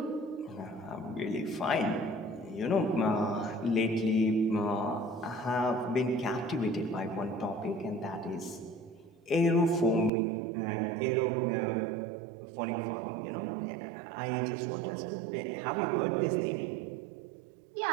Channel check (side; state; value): left; drops out; at 10.1 s